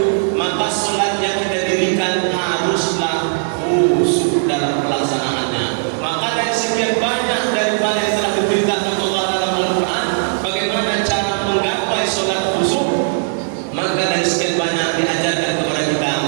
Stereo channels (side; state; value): left; silent; 64 dB below the other